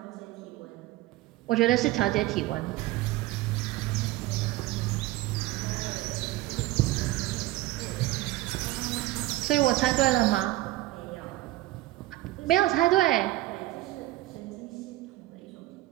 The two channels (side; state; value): left; quieter; 17.0 dB